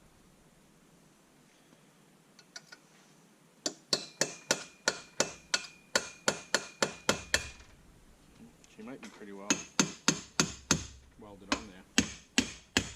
She might be pretty well welded on there.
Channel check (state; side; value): identical; both; correlation 1.00